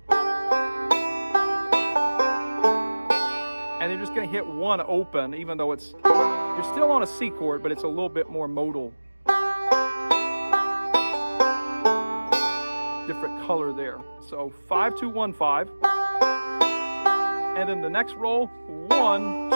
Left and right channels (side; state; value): both; inverted; correlation -1.00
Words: And you're just going to hit one open, even though it's, you're still on a C chord, but it's a little bit more modal. Different color there. So 5, 2, 1, 5. And then the next roll, 1,